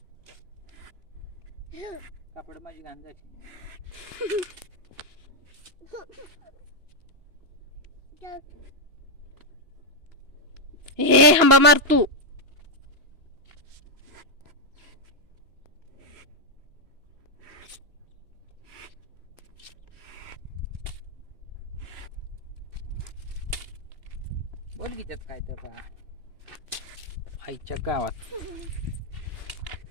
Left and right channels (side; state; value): left; late; 2.9 ms